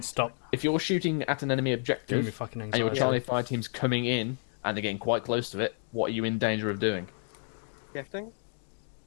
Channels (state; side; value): silent; right; 58 dB below the other